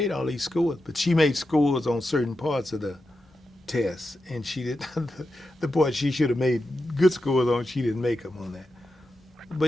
all these scores, but she made scores on certain parts of the tests, and she did the part she should have made good scores on. She didn't make them on that.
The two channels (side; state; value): both; normal; correlation 0.89